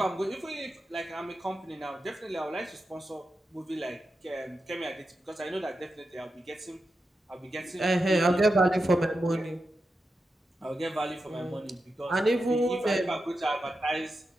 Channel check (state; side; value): normal; both; correlation 0.89